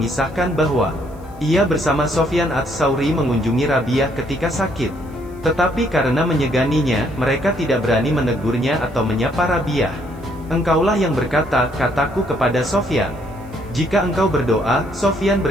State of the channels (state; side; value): noise; left; hiss, 30 dB below the sound